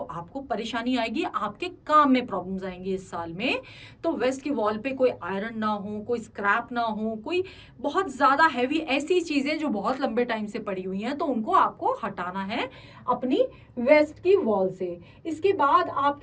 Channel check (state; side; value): identical; both; correlation 1.00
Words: परेशानी आएगी, आपके काम में प्रॉब्लम्स आएंगी इस साल में। तो वेस्ट की वॉल पे कोई आयरन ना हो, कोई स्क्रैप ना हो, कोई बहुत ज्यादा हैवी ऐसी चीजें जो बहुत लंबे टाइम से पड़ी हुई हैं, तो उनको आपको हटाना है अपनी वेस्ट की वॉल से। इसके बाद